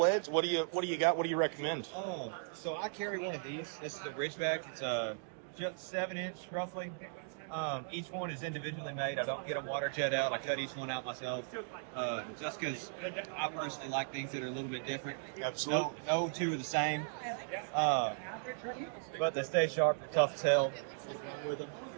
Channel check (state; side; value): silent; left; digital silence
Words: what do you got? What do you recommend? Oh, so I carry one of these. This is the Ridgeback. It's just 7-inch roughly. Each one is individually made. I don't get them water jet out. I cut each one out myself, just because I personally like things that are a little bit different. Absolutely. No two are the same, but they stay sharp. They're tough as hell. What's wrong with them?